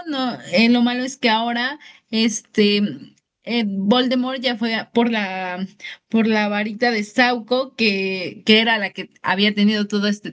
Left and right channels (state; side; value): identical; both; correlation 1.00